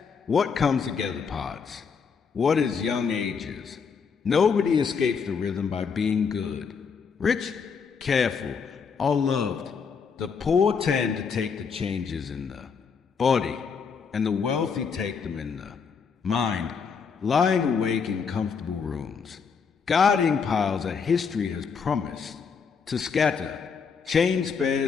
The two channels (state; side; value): quieter; right; 5.9 dB